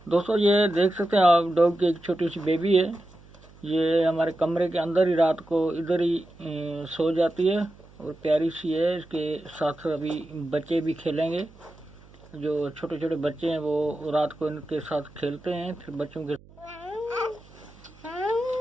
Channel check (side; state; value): right; noise; hum, 24 dB below the sound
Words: दोस्तों ये देख सकते हैं आप, डॉग की एक छोटी सी बेबी है। ये हमारे कमरे के अंदर ही रात को इधर ही सो जाती है और प्यारी सी है। इसके साथ अभी बच्चे भी खेलेंगे। जो छोटे छोटे बच्चे हैं वो रात को इनके साथ खेलते हैं। फिर बच्चों के